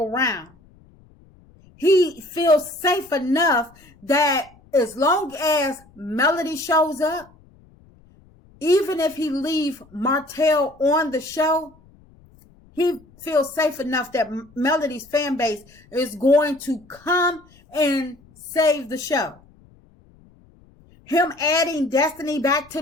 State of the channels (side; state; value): left; noise; rumble, 28 dB below the sound